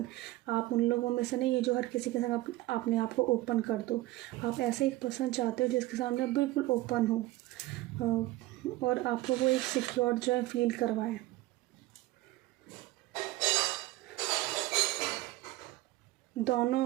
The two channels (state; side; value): quieter; left; 17.8 dB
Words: आप उन लोगों में से नहीं है जो हर किसी के साथ अपने आप को ओपन कर दो। आप ऐसे एक पर्सन चाहते हो जिसके सामने बिल्कुल ओपन हो, और आपको वो एक सिक्योर जो है फील करवाए।